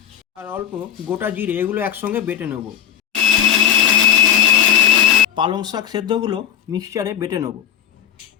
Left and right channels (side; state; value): right; quieter; 9.3 dB